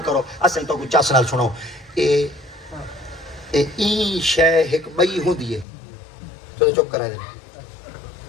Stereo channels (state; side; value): drops out; right; at 5.7 s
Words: کرو اسیں تو کوئی چس نال سنو این شے ایک بئی ہوندی ہے تو چپ کرا دے